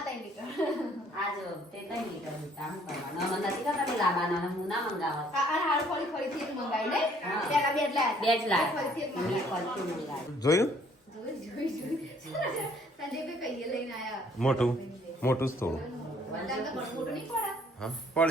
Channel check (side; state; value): both; normal; correlation 0.61